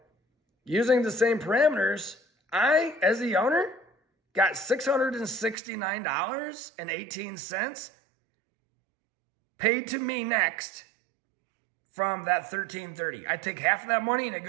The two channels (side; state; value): left; drops out; at 5.6 s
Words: using the same parameters, I, as the owner, got $669.18 paid to me next from that $1,330. I take half of that money and it